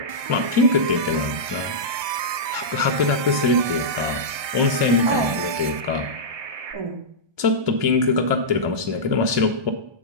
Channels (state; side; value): late; left; 1.2 ms